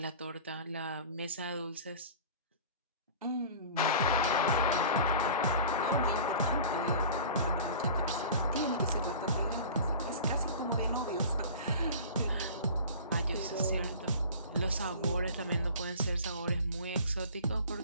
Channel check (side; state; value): both; inverted; correlation -0.40